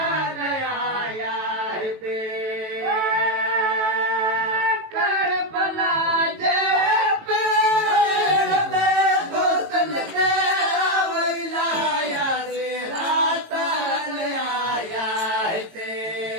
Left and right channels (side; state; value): left; late; 18 ms